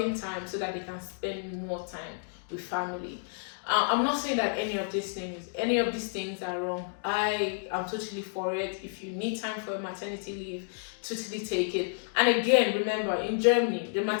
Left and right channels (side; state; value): right; silent; digital silence